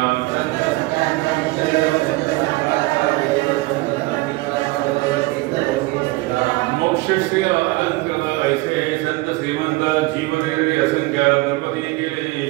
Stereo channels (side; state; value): left; quieter; 21.6 dB